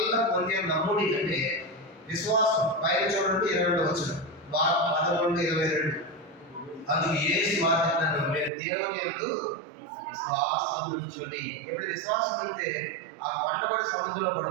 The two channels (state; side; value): drops out; left; at 8.5 s